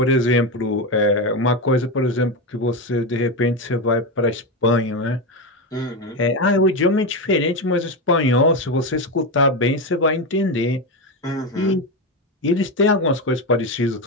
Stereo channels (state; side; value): normal; both; correlation 0.13